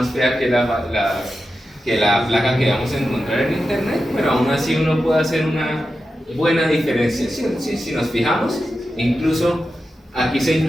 fea que la placa que vamos a encontrar en internet, pero aún así uno puede hacer una buena diferenciación. Si nos fijamos, incluso aquí se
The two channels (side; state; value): both; normal; correlation 0.91